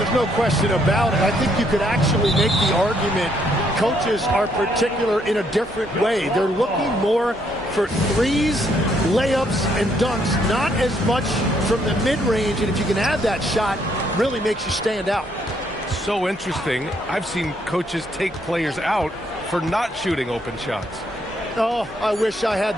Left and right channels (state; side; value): normal; both; correlation 0.71